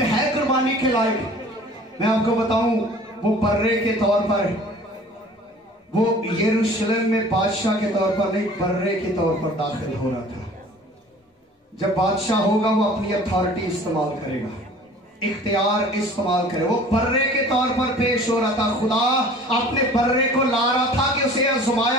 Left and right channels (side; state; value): both; normal; correlation 0.47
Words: ہے قربانی کے لائق؟ میں آپ کو بتاؤں وہ برے کے طور پر, وہ یروشلم میں بادشاہ کے طور پر نہیں, برے کے طور پر داخل ہو رہا تھا. جب بادشاہ ہوگا وہ اپنی اتھارٹی استعمال کرے گا, اختیار استعمال کرے. وہ برے کے طور پر پیش ہو رہا تھا. خدا اپنے برے کو لا رہا تھا کہ اسے